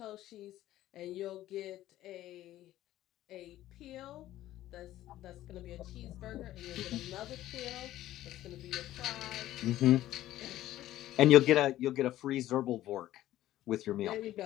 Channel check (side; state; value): right; quieter; 14.1 dB